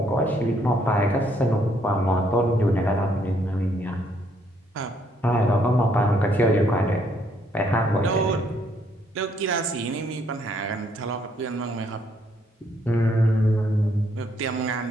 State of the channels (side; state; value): both; normal; correlation 0.70